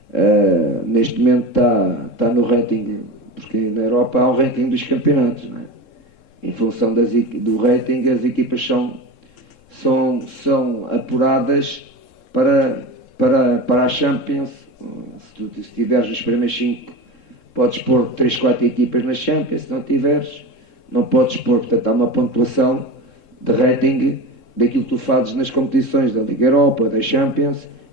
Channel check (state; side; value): late; right; 3.7 ms